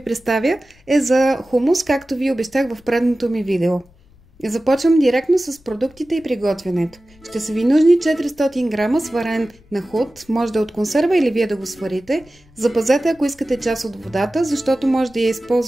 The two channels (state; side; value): noise; left; rumble, 29 dB below the sound